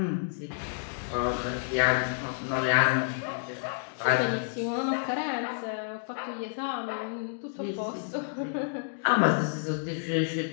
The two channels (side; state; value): right; silent; digital silence